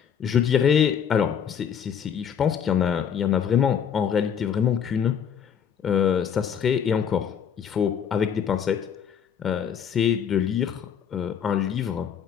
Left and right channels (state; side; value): quieter; right; 8.0 dB